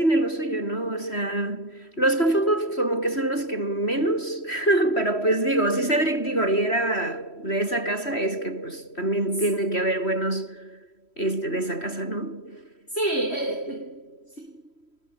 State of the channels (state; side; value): late; right; 3.1 ms